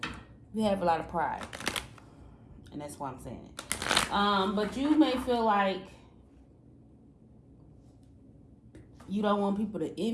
you have a lot of pride, and that's why I'm saying it. But you may feel like you don't want people to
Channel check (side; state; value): both; identical; correlation 1.00